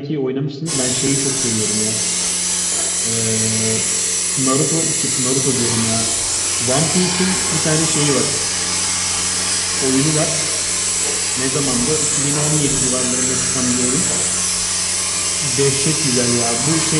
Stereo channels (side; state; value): both; identical; correlation 1.00